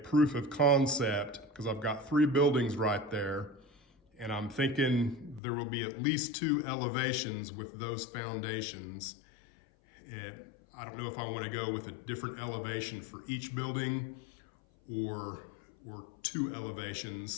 of concept, because I've got 3 buildings right there, and I'm thinking there will be at least 2 elevations with those foundations. And I don't know if I want to go with a different elevation for each building or 2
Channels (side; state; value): right; drops out; at 5.4 s